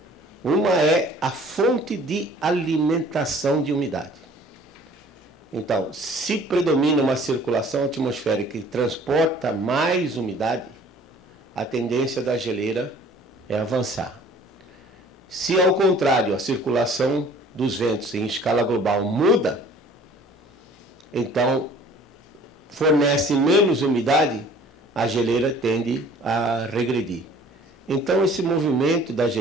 Uma é a fonte de alimentação de umidade. Então, se predomina uma circulação atmosférica que transporta mais umidade, a tendência da geleira é avançar. Se, ao contrário, a circulação dos ventos em escala global muda, então fornece menos umidade, a geleira tende a regredir. Então, esse movimento da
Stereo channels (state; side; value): normal; both; correlation 0.52